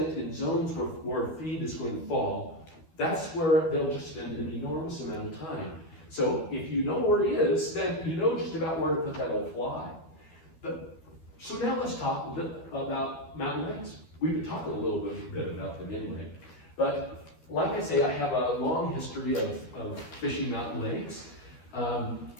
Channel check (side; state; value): right; late; 12 ms